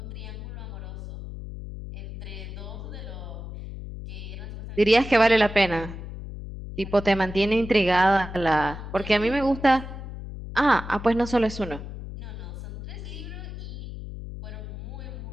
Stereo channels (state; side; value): noise; left; hum, 10 dB below the sound